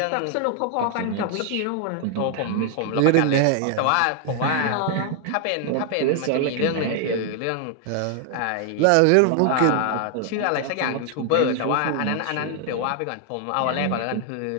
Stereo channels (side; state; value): both; different; correlation 0.00